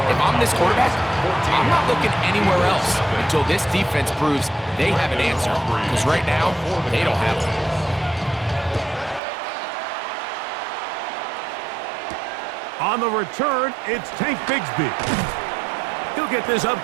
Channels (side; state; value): left; drops out; at 9.2 s